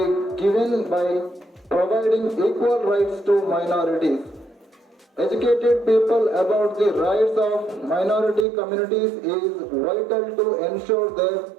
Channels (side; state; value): left; drops out; at 8.5 s